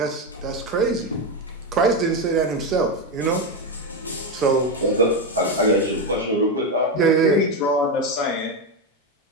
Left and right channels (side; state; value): both; normal; correlation 0.10